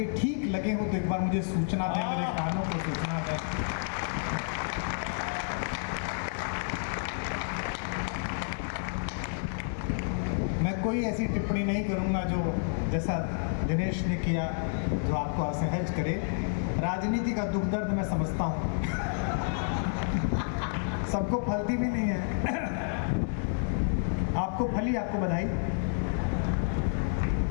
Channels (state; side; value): silent; right; digital silence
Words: ठीक लगे हो तो एक बार मुझे सूचना दें, मेरे कानों को सूचना दें। मैं कोई ऐसी टिप्पणी नहीं करूंगा जो जैसा दिनेश ने किया जो आपको असहज करे। राजनीति का दुख दर्द मैं समझता हूँ, सबको फलती भी नहीं है। आपको फली, आपको बधाई।